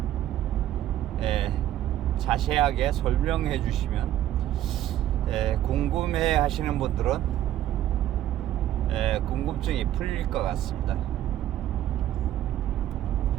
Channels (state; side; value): quieter; left; 12.5 dB